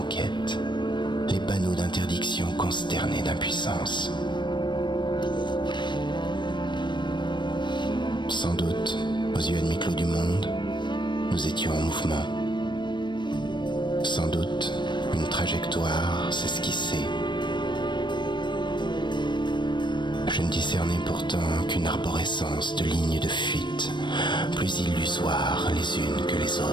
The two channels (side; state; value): right; late; 0.22 ms